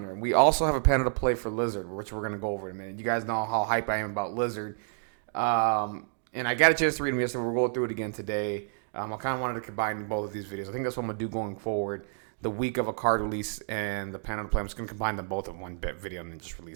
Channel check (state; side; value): silent; left; digital silence